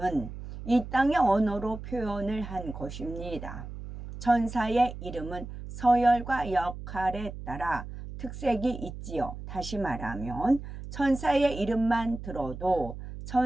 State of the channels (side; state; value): right; noise; hum, 11 dB below the sound